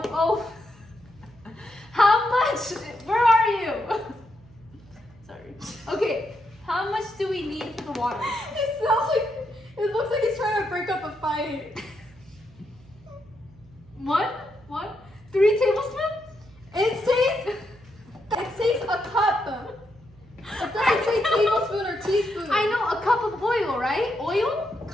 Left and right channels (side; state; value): right; noise; hum, 25 dB below the sound